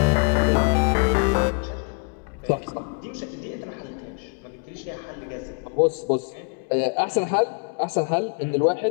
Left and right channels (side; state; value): right; quieter; 34.9 dB